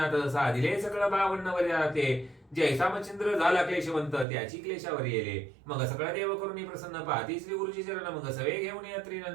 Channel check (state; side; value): drops out; left; at 4.2 s